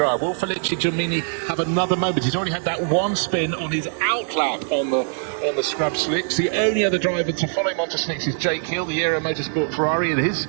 will Felice Gelmini have another moment? He's already had that one spin on his outlap on the scrub slicks. The only other driver to follow him onto slicks is Jake Hill, the Aero Motorsport Ferrari, and his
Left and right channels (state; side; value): silent; left; 63 dB below the other